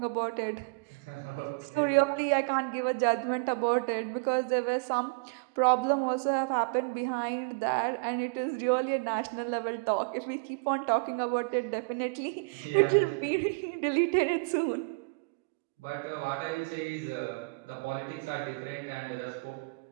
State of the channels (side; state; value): left; quieter; 33.9 dB